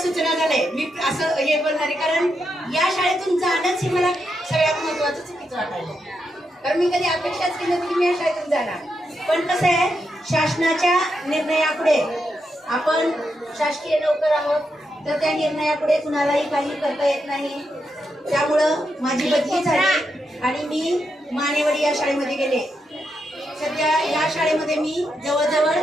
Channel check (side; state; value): both; normal; correlation 0.84